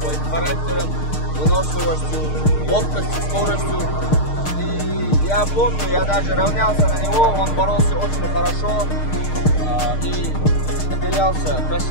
характером, выносливостью, ловкостью, скоростью. И я помню, я даже равнялся на него, он боролся очень хорошо и выделялся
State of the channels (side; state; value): right; late; 6.5 ms